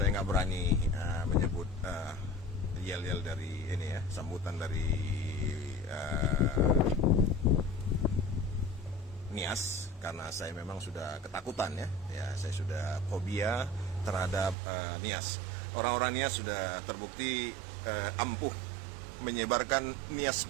nggak berani menyebut yel-yel dari ini ya, sambutan dari Nias, karena saya memang sudah ketakutan ya, saya sudah fobia terhadap Nias. Orang-orang Nias sudah terbukti ampuh menyebarkan Nias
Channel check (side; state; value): left; drops out; at 14.6 s